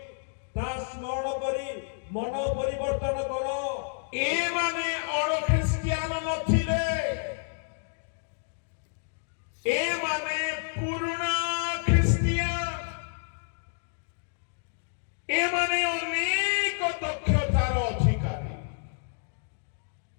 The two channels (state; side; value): silent; right; digital silence